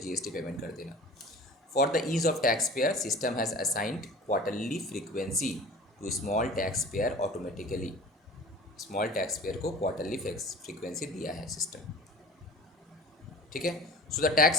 पेमेंट कर देना। For the ease of tax payer system has assigned quarterly frequency to small tax payer automatically. Small tax payer को क्वार्टरली फ्रीक्वेंसी दिया है सिस्टम, ठीक है। So the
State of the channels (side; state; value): both; normal; correlation 0.41